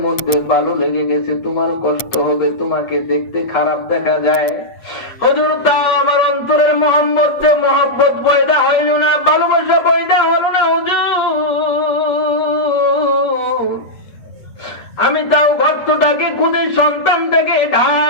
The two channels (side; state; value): right; late; 8.0 ms